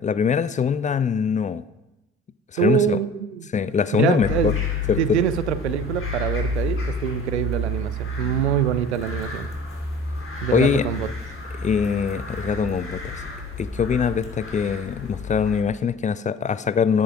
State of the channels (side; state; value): both; normal; correlation 0.44